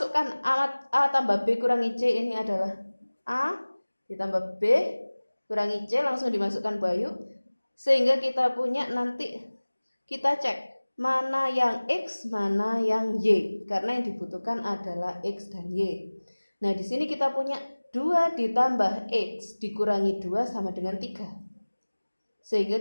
A tambah B kurangi C, ini adalah A ditambah B kurangi C, langsung dimasukkan Bu Ayu. Sehingga kita punya nanti kita cek mana yang X, mana yang Y. Karena yang dibutuhkan adalah X dan Y. Nah di sini kita punya 2 ditambah X dikurangi 2 sama dengan 3.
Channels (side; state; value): both; inverted; correlation -1.00